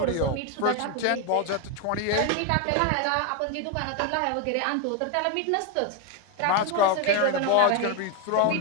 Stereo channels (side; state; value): both; different; correlation 0.01